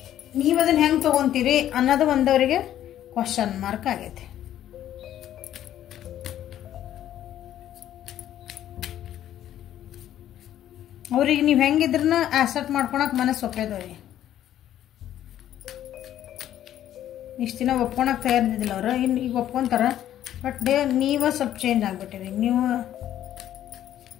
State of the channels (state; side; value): quieter; right; 11.7 dB